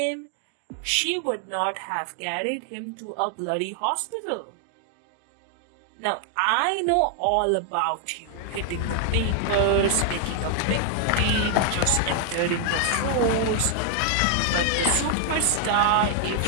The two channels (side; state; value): both; different; correlation 0.00